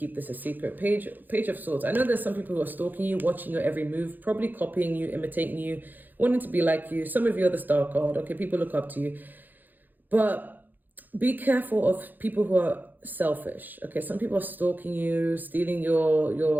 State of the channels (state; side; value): late; left; 0.087 ms